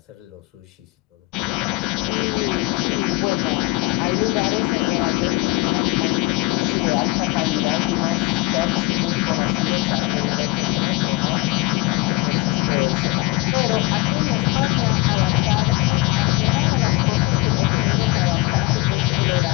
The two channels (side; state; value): right; quieter; 21.2 dB